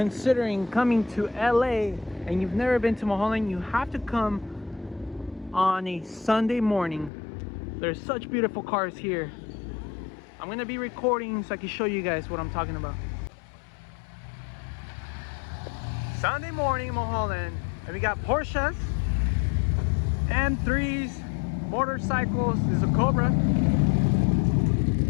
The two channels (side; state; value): right; drops out; at 7.1 s